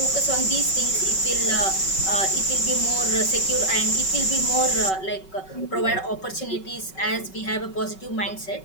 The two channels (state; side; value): late; right; 5.3 ms